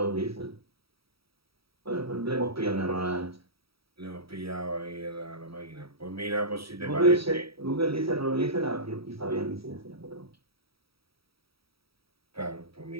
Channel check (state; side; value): late; left; 0.76 ms